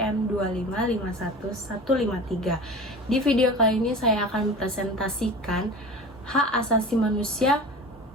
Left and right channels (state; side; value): normal; both; correlation 0.35